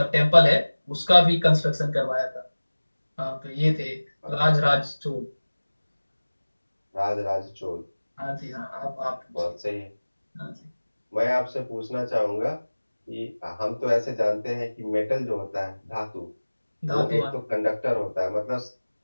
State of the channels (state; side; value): inverted; both; correlation -1.00